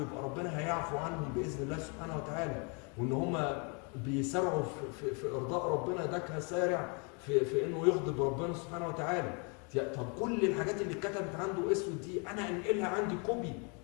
يبقى ربنا هيعفو عنهم باذن الله سبحانه وتعالى، وان هم بيسارعوا في ارضاء ربنا، ده كسارع في انه يغضب ربنا سبحانه وتعالى. طب كل الحاجات اللي اتكتبت عنده اسود دي انا انقلها عندي كوبي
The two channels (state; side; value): quieter; right; 34.3 dB